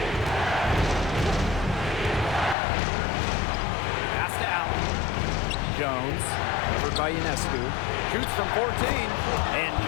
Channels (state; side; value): drops out; right; at 2.6 s